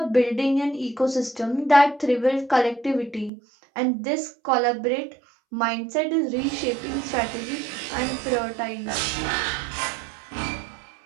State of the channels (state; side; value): drops out; left; at 3.3 s